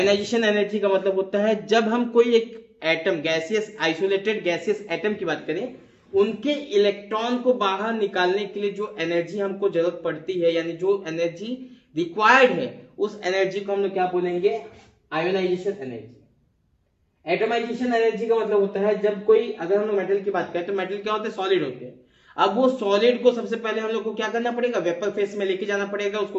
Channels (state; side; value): identical; both; correlation 1.00